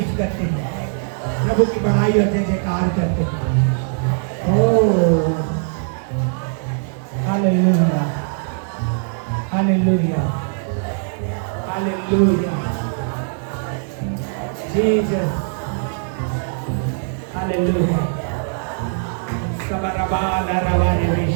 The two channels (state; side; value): silent; left; 63 dB below the other